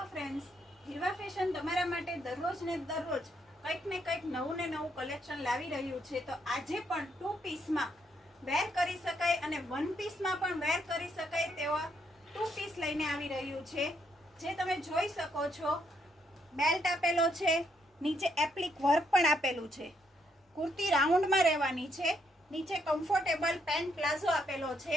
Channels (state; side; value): normal; both; correlation 0.74